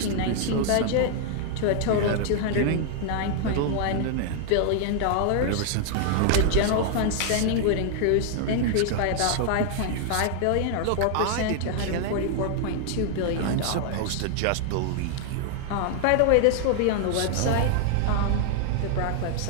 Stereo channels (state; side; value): different; both; correlation 0.00